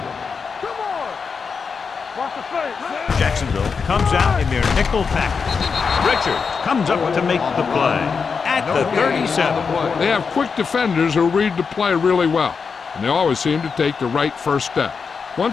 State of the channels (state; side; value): quieter; right; 5.5 dB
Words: Jacksonville comes out in their nickel package. Richards comes up to make the play at the 37. They have quick defenders who read the play really well, and they always seem to take the right first step.